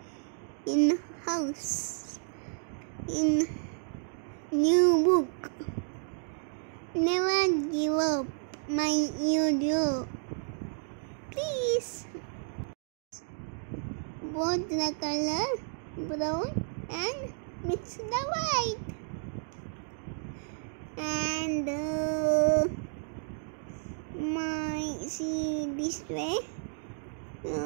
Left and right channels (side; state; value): left; silent; digital silence